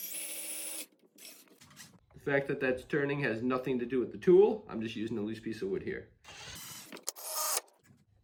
The fact that that's turning has nothing to do with the tool. I'm just using a loose piece of wood here.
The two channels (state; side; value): identical; both; correlation 1.00